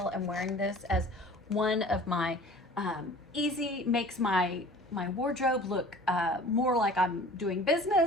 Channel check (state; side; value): normal; both; correlation 0.45